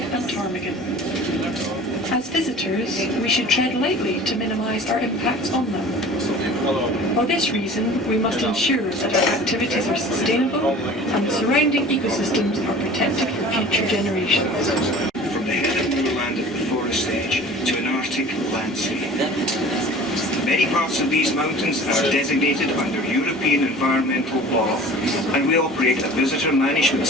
ptarmigan. As visitors, we should tread lightly to minimise our impacts on them. For this reason, we must ensure that our activities are sustainable and the surrounding ecosystems are protected for future generations. From the head of moorland at the forest edge to an Arctic landscape. Many parts of these mountains are designated under European environmental law, and we operate a visitor management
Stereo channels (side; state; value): both; normal; correlation 0.43